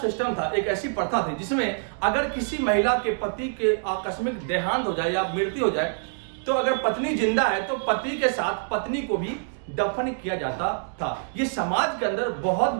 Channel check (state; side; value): silent; left; digital silence